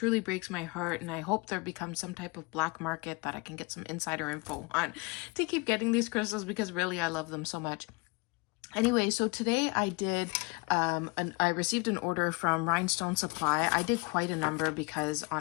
breaks my heart, and I hope there becomes some type of black market that I can get some insider info on to keep getting these crystals, because really I love them so much. Anyway, so today I did, I received an order from Rhinestone Supply. I did quite a number because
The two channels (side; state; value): right; quieter; 28.6 dB